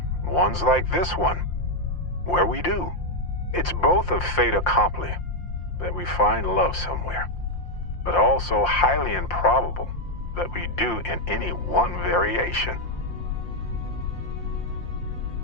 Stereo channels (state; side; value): late; right; 5.7 ms